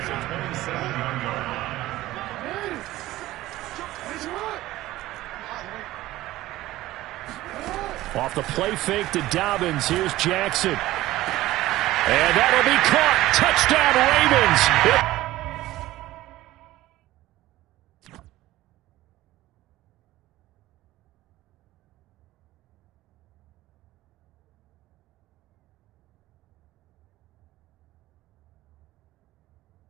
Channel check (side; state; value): left; quieter; 16.3 dB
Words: Off the play fake to Dobbins. Here's Jackson. And that'll be caught. Touchdown, Ravens.